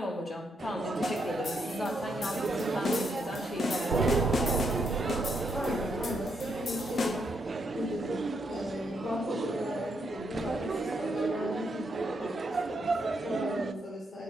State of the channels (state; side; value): normal; both; correlation 0.78